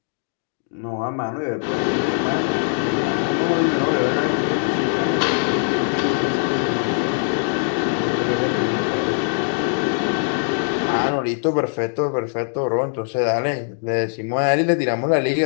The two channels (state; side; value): silent; right; digital silence